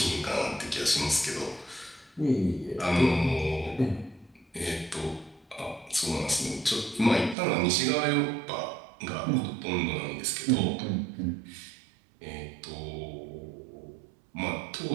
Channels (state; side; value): drops out; left; at 7.4 s